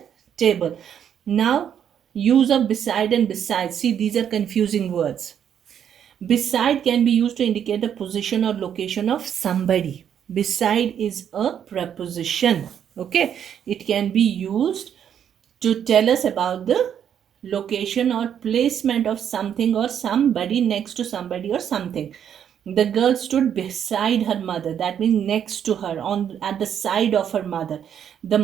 table. Now use of beside and beside. See, these are confusing words. Beside can be used to indicate the position or location of somebody. Beside is a preposition. Okay, it can be used to tell us about the location or placement of something or somebody, next to somebody or something. The girl stood beside her mother. That means next to her, on at the side of her mother. The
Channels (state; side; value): quieter; left; 8.9 dB